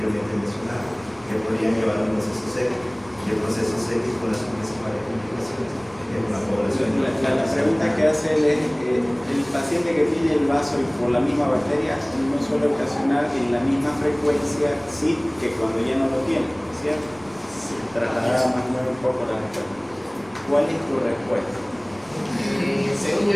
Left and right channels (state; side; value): noise; right; rumble, 27 dB below the sound